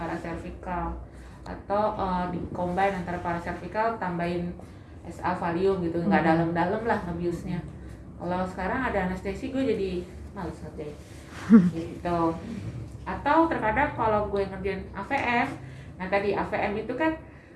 atau di combine antara paracervical tambahin SA valium gitu, nggak dalam-dalam lah ngebiusnya. Kalau sekarang ada anestesi gue jadi males ngerjain gitu. Atau terkadang kalau gue ngerjain AVM, nah tadi AVM itu kan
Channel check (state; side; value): identical; both; correlation 1.00